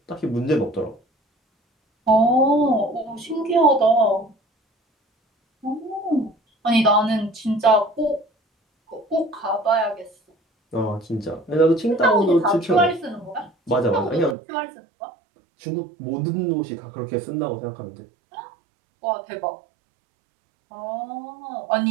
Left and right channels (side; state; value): left; drops out; at 14.4 s